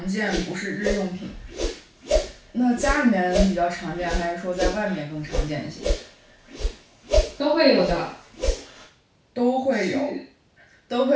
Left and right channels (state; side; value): identical; both; correlation 1.00